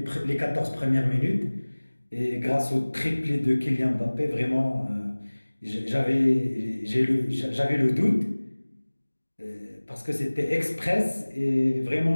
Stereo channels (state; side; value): inverted; both; correlation -1.00